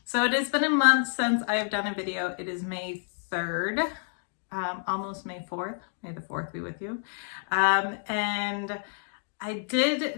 So it has been a month since I have done a video. It is May 3rd, almost May 4th. May the 4th be with you. And I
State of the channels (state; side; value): silent; right; digital silence